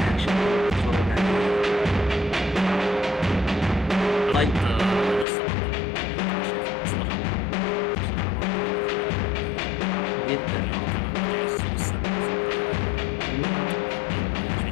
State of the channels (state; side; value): drops out; right; at 5.2 s